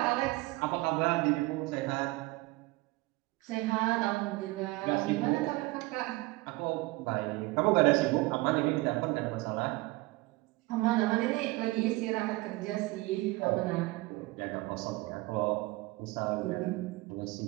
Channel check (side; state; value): left; quieter; 21.7 dB